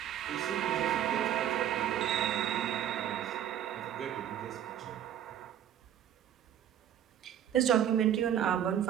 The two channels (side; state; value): left; quieter; 10.4 dB